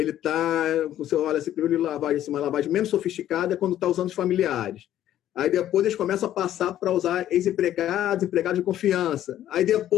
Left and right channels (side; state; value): right; quieter; 12.1 dB